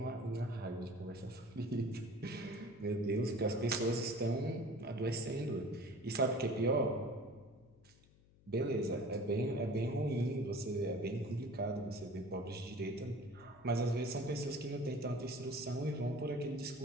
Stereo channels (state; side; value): noise; left; hum, 27 dB below the sound